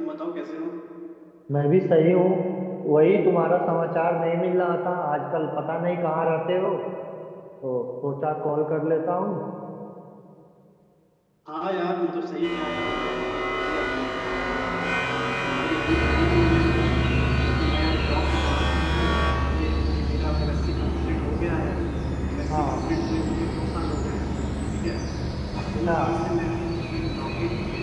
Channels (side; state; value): both; identical; correlation 1.00